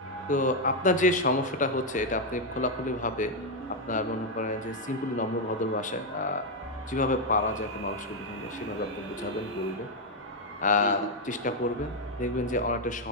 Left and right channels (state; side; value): normal; both; correlation 0.02